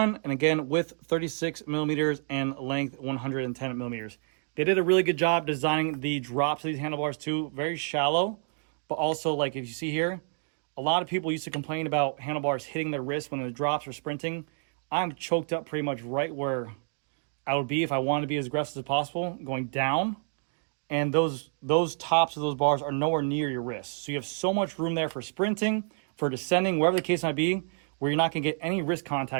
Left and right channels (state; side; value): silent; left; 59 dB below the other